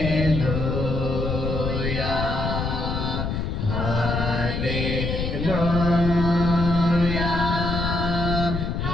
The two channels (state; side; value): noise; left; rumble, 2 dB below the sound